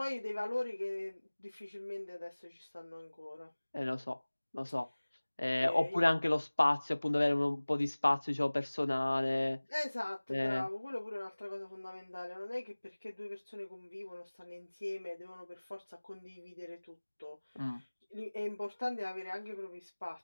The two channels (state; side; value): inverted; both; correlation -1.00